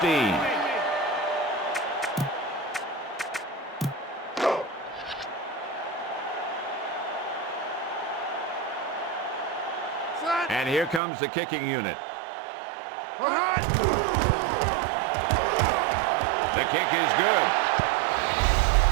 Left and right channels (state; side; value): drops out; left; at 11.0 s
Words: And here comes the kicking unit. The kick is good.